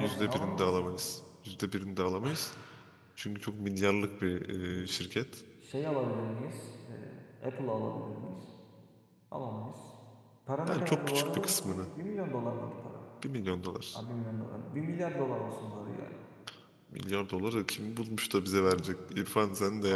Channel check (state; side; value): identical; both; correlation 1.00